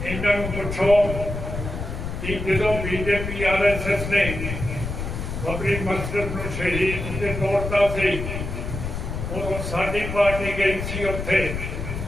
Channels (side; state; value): left; noise; rumble, 5 dB below the sound